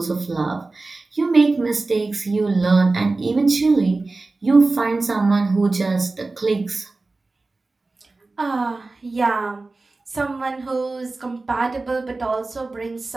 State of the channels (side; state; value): left; quieter; 3.4 dB